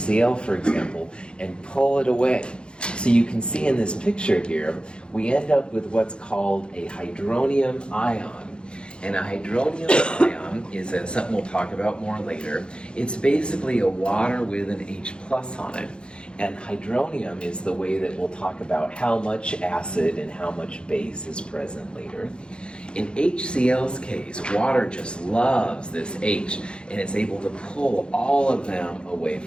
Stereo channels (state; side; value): late; right; 0.053 ms